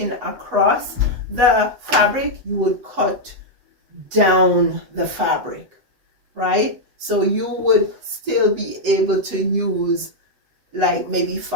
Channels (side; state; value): left; late; 7.9 ms